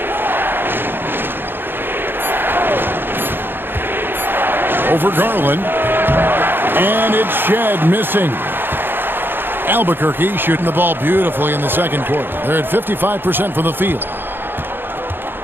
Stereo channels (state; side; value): late; left; 0.10 ms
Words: Over Garland. And it's Shed missing. Albuquerque shooting the ball beautifully in the second quarter. They're at 55% from the field.